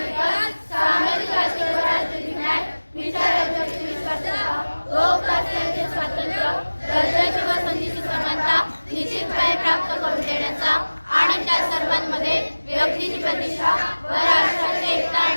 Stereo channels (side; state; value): both; inverted; correlation -1.00